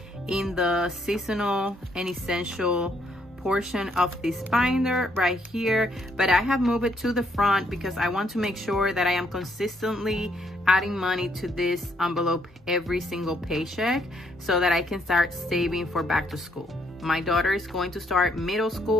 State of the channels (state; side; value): normal; both; correlation 0.71